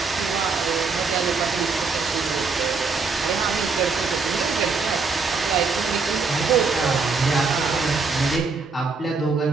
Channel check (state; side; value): quieter; left; 4.5 dB